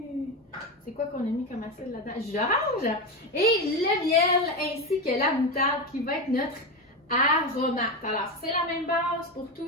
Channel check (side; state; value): both; normal; correlation 0.16